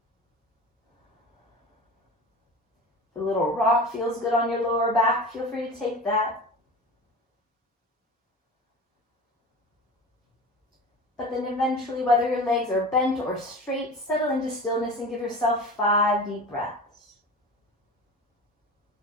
If a little rock feels good on your lower back, feel free to take that. But then eventually, whether your legs are bent or straight, settle into stillness and give yourself 5 deep breaths.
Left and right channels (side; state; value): both; normal; correlation 0.34